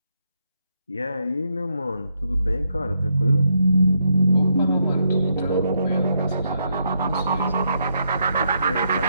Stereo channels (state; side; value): inverted; both; correlation -0.78